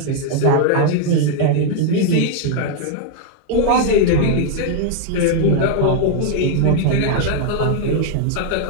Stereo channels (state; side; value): different; both; correlation 0.00